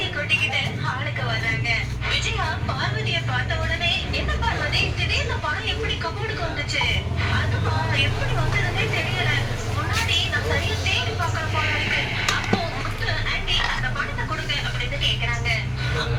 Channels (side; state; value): both; identical; correlation 1.00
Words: கூட்டிக்கிட்டு ஹாலுக்கு வராங்க. விஜயா பார்வதியை பார்த்த உடனே, என்ன பார்வதி திடீர்னு பணம் எப்படி கபோர்டுக்கு வந்துச்சு? அதுவா, எப்படி வந்ததுன்னே தெரியல. முன்னாடி நான் சரியா தேடி பார்க்கற போல இருக்கு. அப்போ முத்து, ஆண்டி அந்த பணத்தை கொடுங்க அப்படின்னு கேக்குறாங்க.